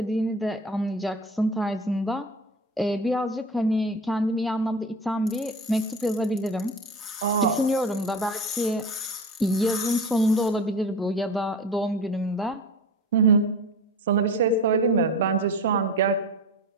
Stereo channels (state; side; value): normal; both; correlation 0.33